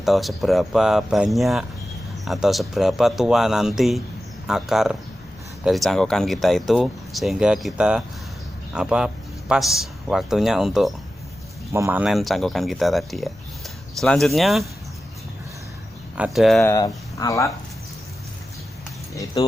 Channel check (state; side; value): normal; both; correlation 0.93